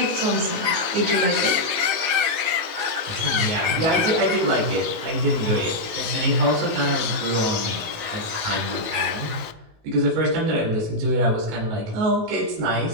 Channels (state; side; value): late; left; 19 ms